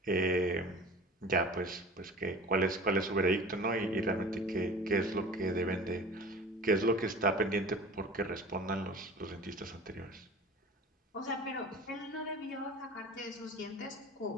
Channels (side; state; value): both; normal; correlation 0.40